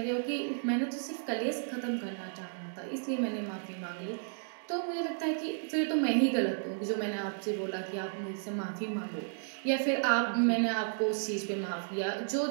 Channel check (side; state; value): left; silent; digital silence